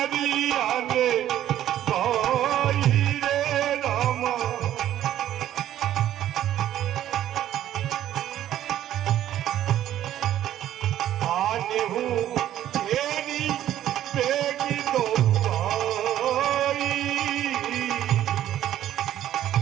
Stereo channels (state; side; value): quieter; left; 12.1 dB